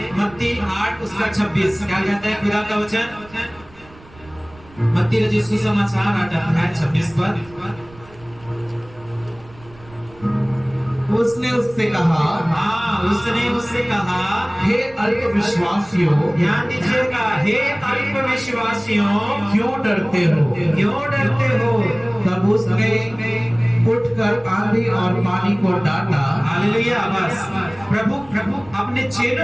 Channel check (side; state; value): right; noise; rumble, 24 dB below the sound